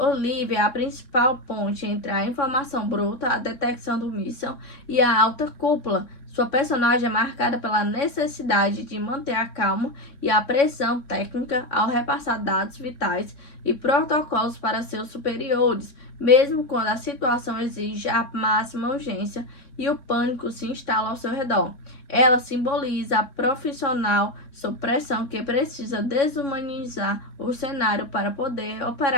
é a principal ponte entre a informação bruta, a detecção do míssil e a alta cúpula. Sua personagem é marcada pela necessidade de manter a calma e a pressão técnica ao repassar dados vitais e protocolos para seus superiores, mesmo quando a situação exige a máxima urgência e o pânico se instala ao seu redor. Ela simboliza a profissional sob pressão que precisa desumanizar o cenário para poder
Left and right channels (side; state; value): right; late; 3.6 ms